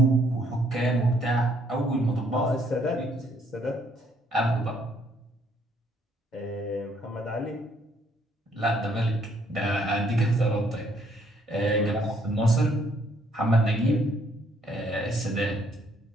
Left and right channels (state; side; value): normal; both; correlation 0.67